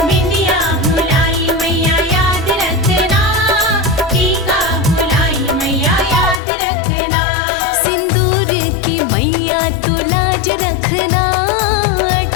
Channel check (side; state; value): right; drops out; at 6.4 s